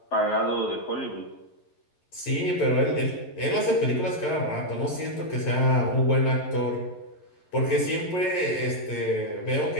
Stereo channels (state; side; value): late; right; 11 ms